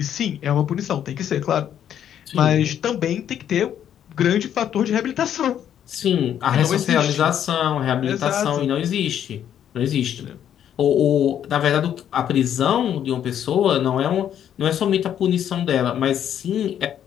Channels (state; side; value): quieter; right; 9.8 dB